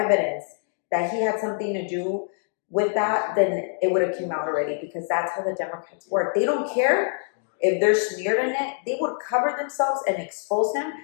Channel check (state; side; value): silent; right; 59 dB below the other